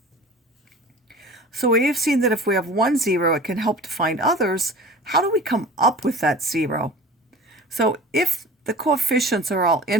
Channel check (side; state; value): both; normal; correlation 0.39